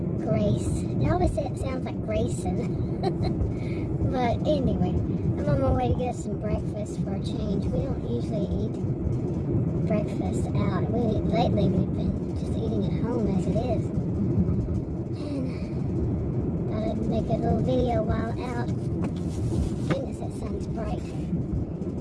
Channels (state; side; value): identical; both; correlation 1.00